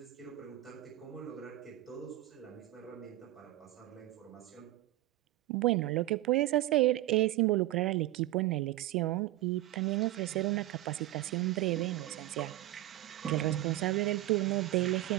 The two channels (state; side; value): quieter; left; 16.1 dB